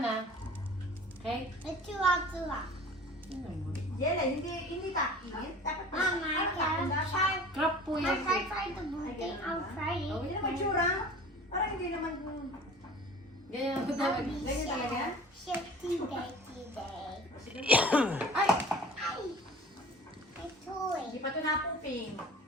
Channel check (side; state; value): both; normal; correlation 0.43